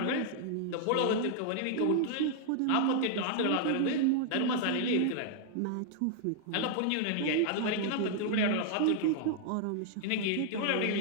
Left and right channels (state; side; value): different; both; correlation -0.01